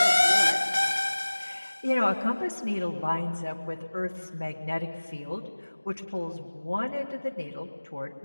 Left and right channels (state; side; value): inverted; both; correlation -1.00